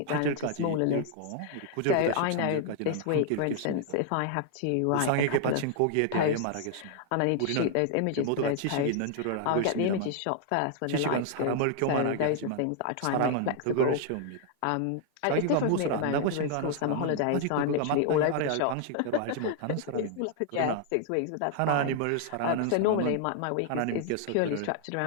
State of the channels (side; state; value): both; different; correlation 0.00